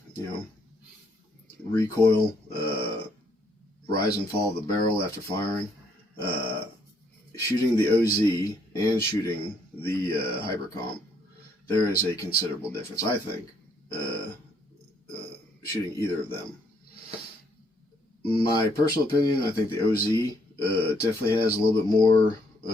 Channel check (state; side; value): normal; both; correlation 0.69